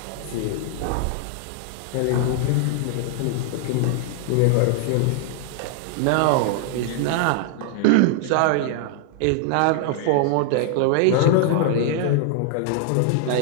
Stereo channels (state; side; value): different; both; correlation 0.00